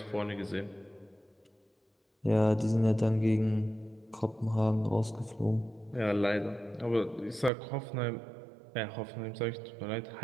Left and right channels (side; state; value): left; drops out; at 7.5 s